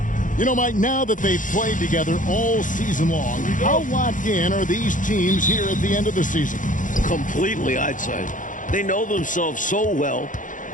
You know, Mike, now that they've played together all season long, how locked in are these teams here at the end of the season? Completely, I'd say. They know themselves so well.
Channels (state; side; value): late; right; 0.38 ms